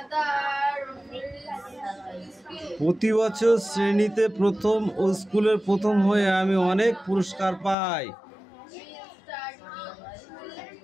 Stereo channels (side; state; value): right; drops out; at 7.8 s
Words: প্রতি বছর শ্রেণীতে প্রথম ও স্কুলের প্রথম হয়ে আমি অনেক পুরস্কার পাই।